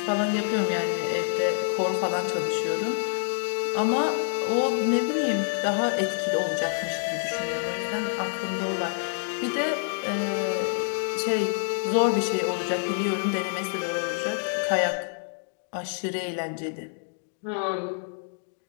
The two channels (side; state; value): right; silent; digital silence